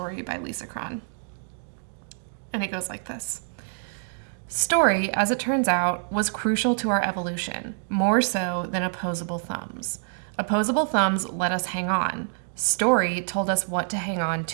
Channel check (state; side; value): silent; left; digital silence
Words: by Lisa Cron. And it goes like this. Story, as it turns out, was crucial to our evolution, more so than opposable thumbs. Opposable thumbs let us hang on. Story told us what to hang on